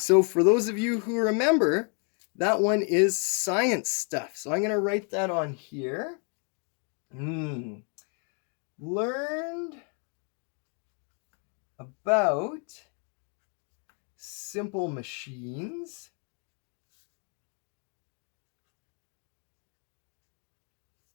for those of you who remember, that one is science stuff. So I'm going to write that on here. Learned about simple machines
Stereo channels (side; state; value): right; quieter; 39.2 dB